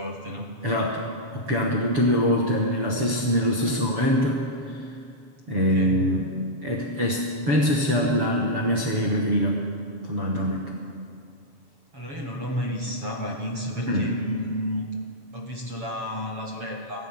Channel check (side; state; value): left; late; 7.0 ms